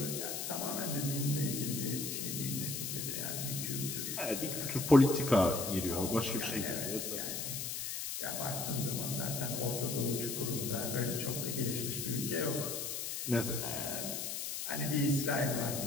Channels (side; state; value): left; noise; hiss, 3 dB below the sound